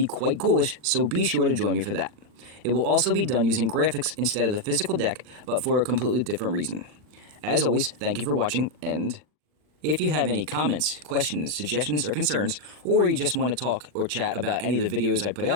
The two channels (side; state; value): left; late; 39 ms